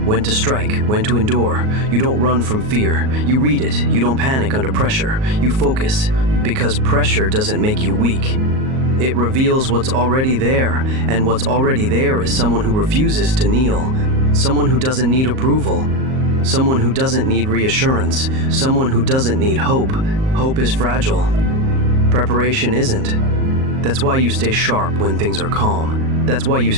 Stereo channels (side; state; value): left; late; 38 ms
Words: when to strike, when to endure. You don't run from fear. You read it. You don't panic under pressure. You focus. Because pressure doesn't make you weak. It reveals what's already there, and what's already there is someone who refuses to kneel. Someone who doesn't need approval. Someone who doesn't need reassurance. Someone who doesn't need hope. Hope is fragile. Preparation isn't. That's why you stay sharp when things are calm. That's why you